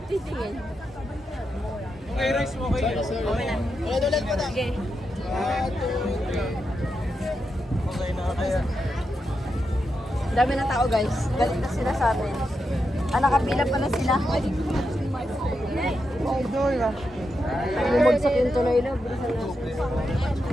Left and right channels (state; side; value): normal; both; correlation 0.86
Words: titingin? Okay, rice mo kayo. Ulit mo na. Sige. Okay na kaya. Dami na tao guys. Galit na sila sa amin. Nakapila pala sila. Idol ah. Bumagsak yung tuloy na. Bilisan na.